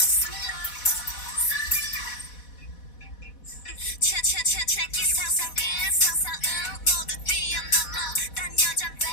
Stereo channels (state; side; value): late; right; 4.1 ms